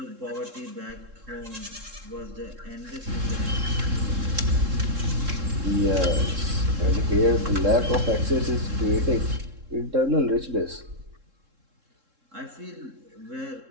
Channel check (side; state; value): left; late; 3.7 ms